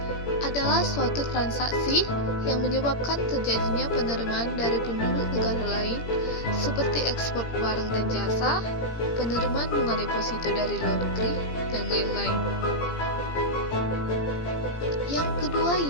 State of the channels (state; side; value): late; right; 17 ms